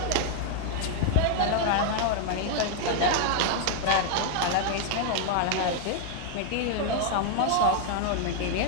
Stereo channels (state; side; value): different; both; correlation 0.00